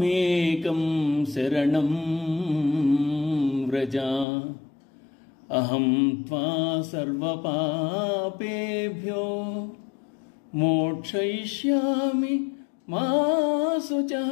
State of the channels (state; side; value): drops out; right; at 4.2 s